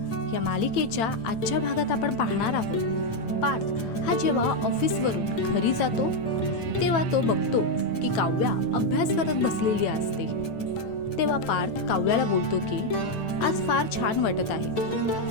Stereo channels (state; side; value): late; right; 9.0 ms